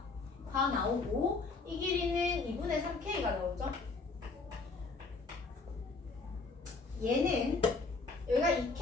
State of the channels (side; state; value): right; quieter; 4.0 dB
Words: 다 나오고 이 길이는 2분의 3K가 나오죠. 얘는 여기가